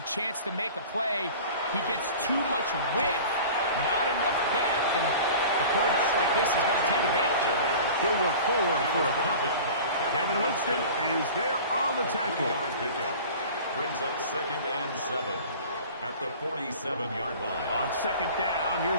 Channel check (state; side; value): inverted; both; correlation -0.40